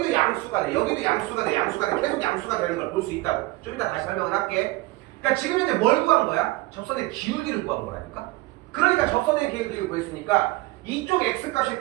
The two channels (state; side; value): quieter; left; 20.8 dB